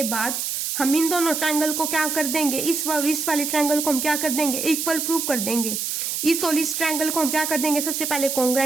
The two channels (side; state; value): right; noise; hiss, 2 dB below the sound